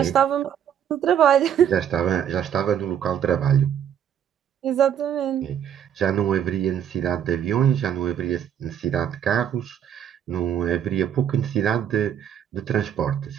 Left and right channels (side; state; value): left; quieter; 9.3 dB